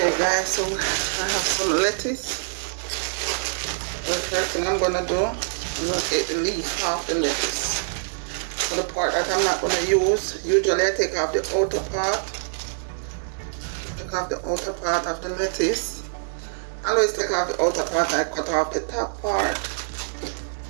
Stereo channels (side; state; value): left; silent; digital silence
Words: guys, so I have some lettuce. The first thing I'm gonna do, I'm gonna take the leaf off the lettuce. So the part that I'm not gonna use, usually I take off the outer part. Take off the outer part of the lettuce. I always take off the outer part and I cut off the top part.